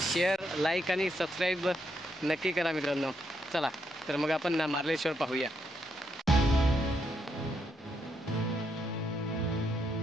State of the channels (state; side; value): normal; both; correlation 0.78